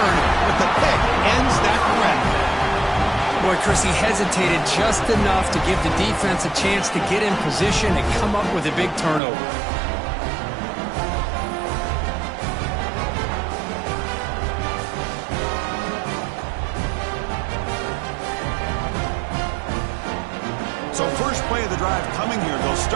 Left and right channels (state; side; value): drops out; left; at 9.2 s